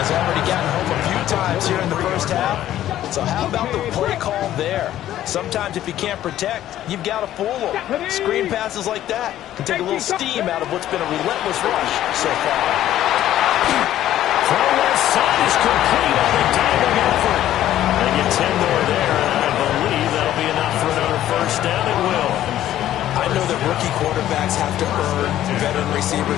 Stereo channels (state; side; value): quieter; right; 12.7 dB